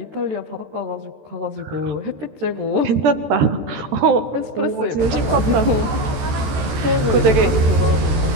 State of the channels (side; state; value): left; late; 14 ms